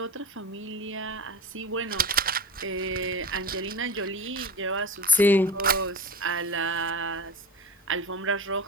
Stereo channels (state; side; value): normal; both; correlation 0.29